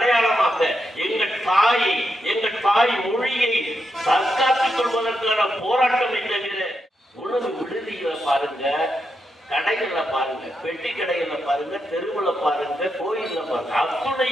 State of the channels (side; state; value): both; normal; correlation 0.84